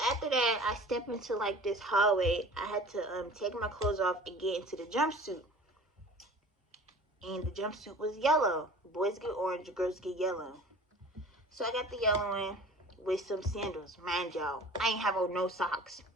after that, I stepped into like this hallway. I had to take my clothes off and get into the jumpsuit. And the jumpsuit was yellow. Boys get orange, girls get yellow. So I got the yellow one with some sandals. Mind y'all, I ain't have on no socks.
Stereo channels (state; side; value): normal; both; correlation 0.44